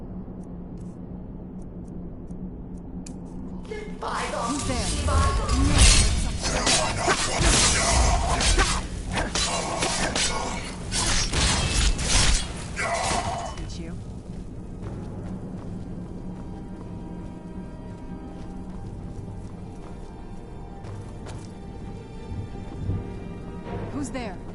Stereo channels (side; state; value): both; identical; correlation 1.00